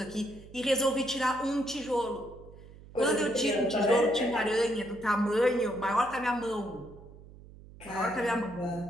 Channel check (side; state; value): right; noise; hum, 19 dB below the sound